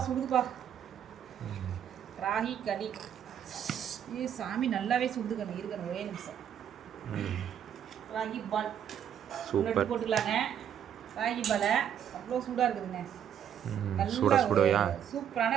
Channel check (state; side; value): quieter; left; 9.3 dB